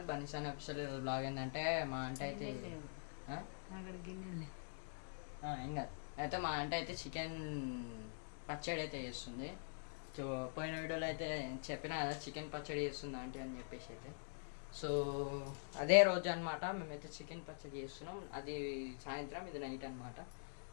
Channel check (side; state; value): right; silent; digital silence